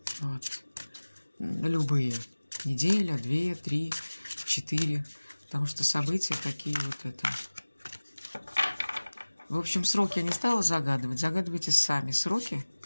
Вот. Любые. Неделя, 2, 3, 4. Потому что события такие вот это. В общем, сроки я не стала загадывать. Загадывайте сами сроки.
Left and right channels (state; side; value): inverted; both; correlation -1.00